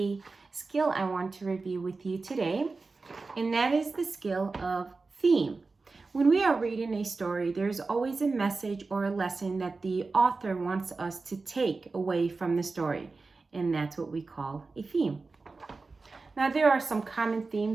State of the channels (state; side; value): quieter; left; 3.9 dB